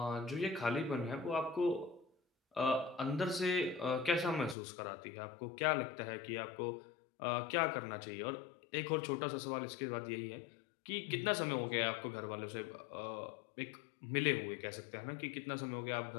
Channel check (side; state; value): right; drops out; at 4.5 s